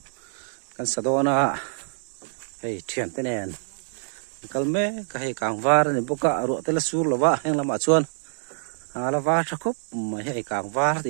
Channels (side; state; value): left; silent; digital silence